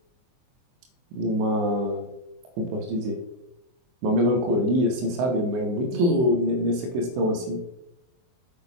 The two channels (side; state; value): left; late; 24 ms